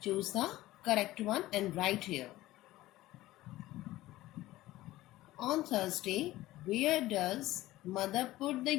Choose the correct one and write here. On Thursday, where does mother put the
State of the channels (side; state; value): right; quieter; 16.6 dB